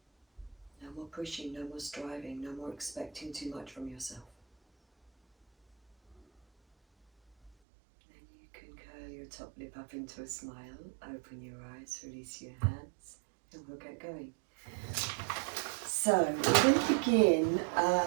No more pushing, no more striving, no more expecting too much from yourself. Then you can curl your top lip up into a smile, open your eyes, release your hands, and we'll get going. So, we're going to begin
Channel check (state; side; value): drops out; left; at 7.5 s